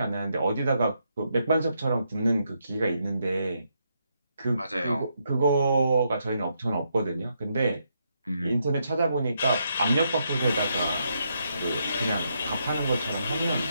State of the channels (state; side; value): inverted; both; correlation -0.79